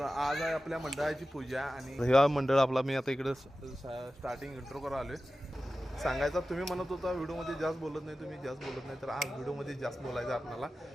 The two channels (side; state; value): both; normal; correlation 0.94